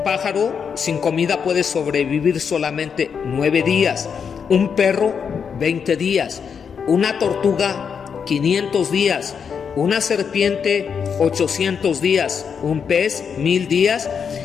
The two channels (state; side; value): quieter; right; 6.7 dB